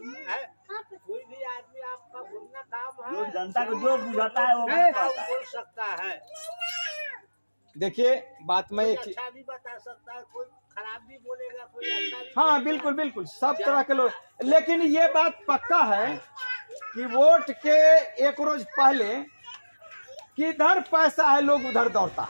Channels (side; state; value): both; inverted; correlation -1.00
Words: कोई भी आदमी आपका बोलना काम है, जो जनता को जो बुझाता है वो बोल सकता है। देखिए बात में एक अच्छा भी बता सकता है, कोई खराब भी बोलेगा, कोई अच्छा भी। हाँ बिल्कुल बिल्कुल, सब तरह के लोग। लेकिन ये बात पक्का है कि वोट के एक रोज पहले किधर पैसा है लोग उधर दौड़ता है,